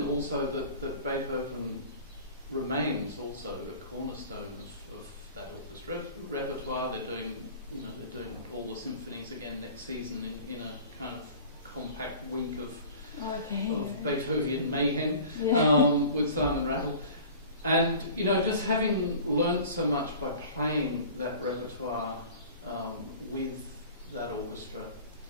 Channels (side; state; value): both; inverted; correlation -0.42